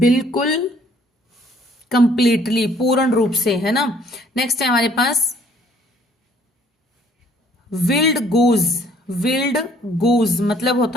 कंप्लीटली, पूर्ण रूप से, है ना। नेक्स्ट है हमारे पास विल्ड गूज। विल्ड गूज मतलब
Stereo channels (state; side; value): normal; both; correlation 0.60